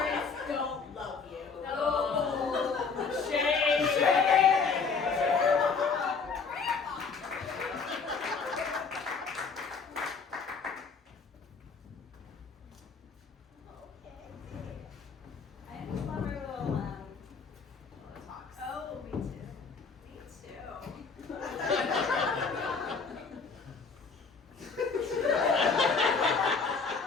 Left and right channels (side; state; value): right; quieter; 5.1 dB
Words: don't love you. I just love our little talks. Oh, me too. Me too.